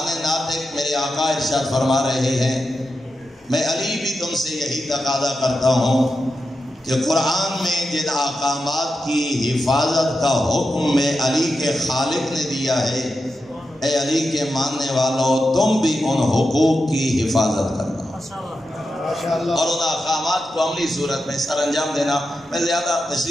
ناطق میرے آقا ارشاد فرما رہے ہیں، میں علی بھی تم سے یہی تقاضا کرتا ہوں کہ قرآن میں جن احکامات کی حفاظت کا حکم میں علی کے خالق نے دیا ہے، اے علی کے ماننے والوں، تم بھی ان حقوق کی حفاظت کرنا اور ان احکامات کو عملی صورت میں سر انجام دینا۔ میں زیادہ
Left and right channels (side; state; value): both; normal; correlation 0.89